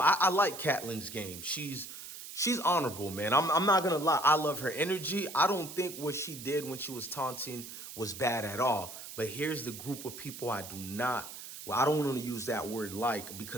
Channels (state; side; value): noise; right; hiss, 12 dB below the sound